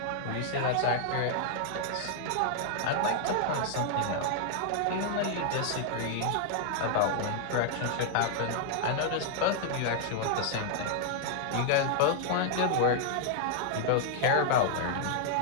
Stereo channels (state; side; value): different; both; correlation -0.01